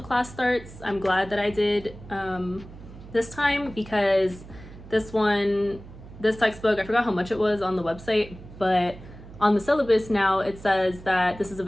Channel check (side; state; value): right; noise; hum, 17 dB below the sound